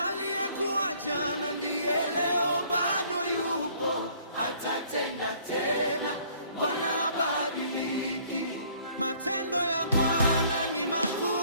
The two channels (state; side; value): inverted; both; correlation -0.58